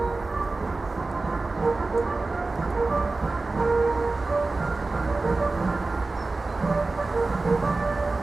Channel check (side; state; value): left; quieter; 3.5 dB